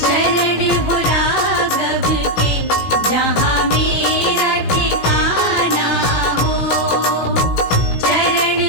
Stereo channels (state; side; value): late; right; 17 ms